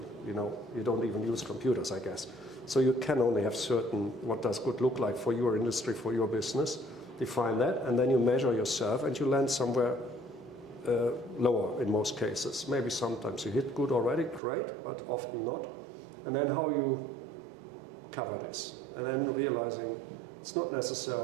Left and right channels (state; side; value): drops out; left; at 14.4 s